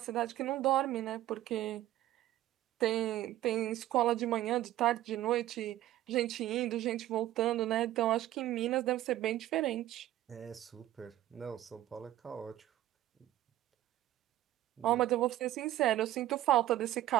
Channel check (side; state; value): left; quieter; 14.2 dB